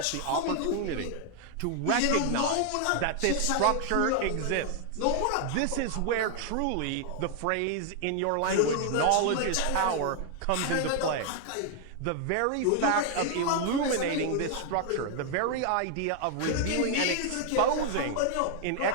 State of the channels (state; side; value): different; both; correlation 0.00